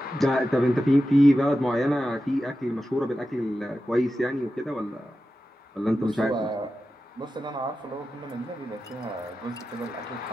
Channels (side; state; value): both; normal; correlation 0.92